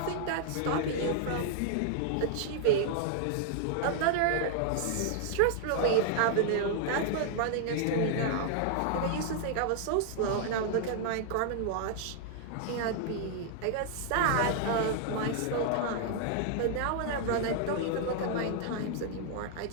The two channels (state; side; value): different; both; correlation -0.01